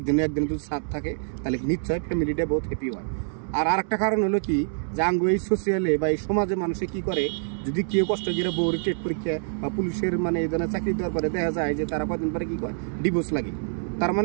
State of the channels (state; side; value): silent; left; 61 dB below the other